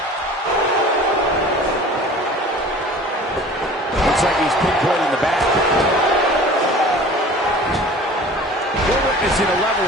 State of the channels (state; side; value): normal; both; correlation 0.43